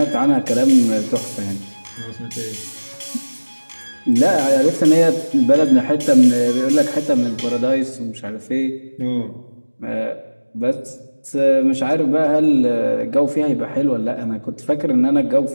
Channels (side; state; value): both; inverted; correlation -1.00